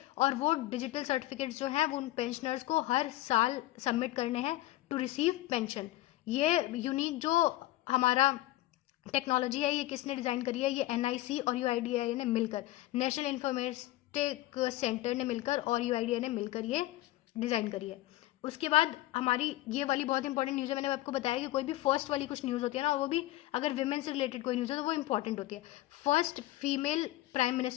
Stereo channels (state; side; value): quieter; right; 16.5 dB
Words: और वो डिजिटल सर्टिफिकेट्स जो हैं वो उन पेंशनर्स को हर साल सबमिट करने हैं टू रिसीव पेंशन। ये यूनिक जो हमारा टेक्नोलॉजी है, ये किसने डिज़ाइन करी है, ये NIC और UIDAI ने मिलकर, नेशनल इंफॉर्मेटिक सेंटर ने मिलकर और UIDAI ने मिलकर ये डिज़ाइन करी है। उसके बाद हमारी ये वाली बहुत इंपॉर्टेंट न्यूज़ है, मैंने आपको बताया कि कोई भी फर्स्ट वाली कुछ न्यूज़ होती है ना, वो भी अगर विमेन से रिलेटेड कोई न्यूज़ है तो वो इंपॉर्टेंट होती है। First female prime